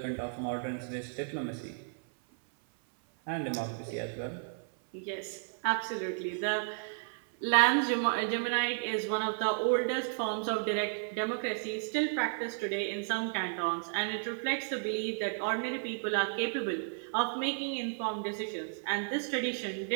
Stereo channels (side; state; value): left; silent; 56 dB below the other